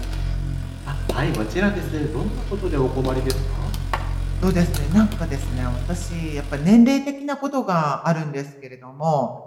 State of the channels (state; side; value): identical; both; correlation 1.00